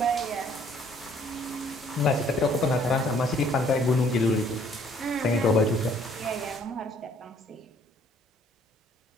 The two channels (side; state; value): both; normal; correlation 0.61